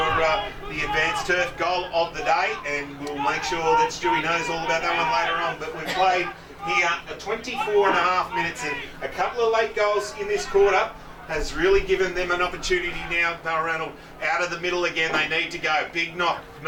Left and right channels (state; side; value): identical; both; correlation 1.00